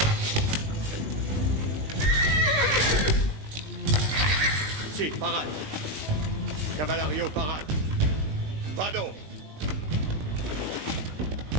Sì, parade. Cavalario, parade. Vado!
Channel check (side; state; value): left; late; 20 ms